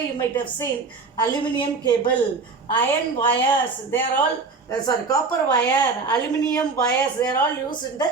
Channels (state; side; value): quieter; left; 4.4 dB